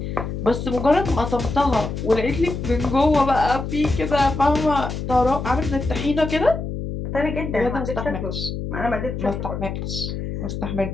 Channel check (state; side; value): noise; left; hum, 5 dB below the sound